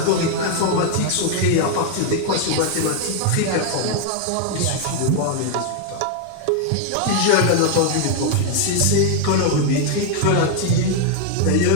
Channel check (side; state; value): both; different; correlation 0.00